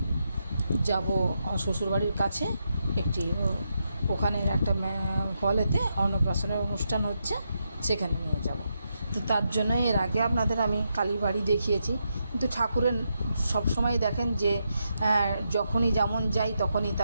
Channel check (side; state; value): both; inverted; correlation -0.83